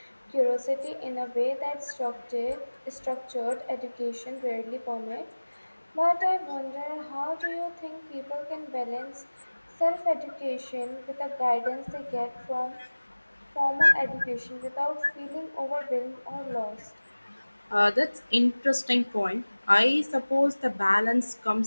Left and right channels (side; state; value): both; inverted; correlation -1.00